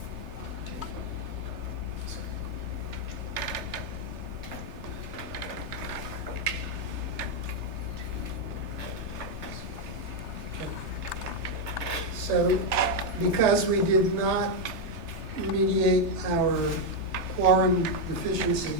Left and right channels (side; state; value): left; late; 3.3 ms